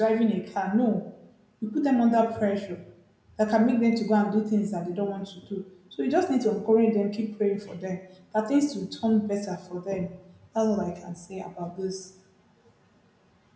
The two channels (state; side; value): identical; both; correlation 1.00